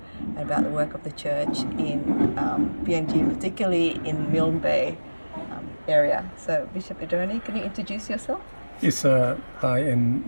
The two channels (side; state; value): both; inverted; correlation -1.00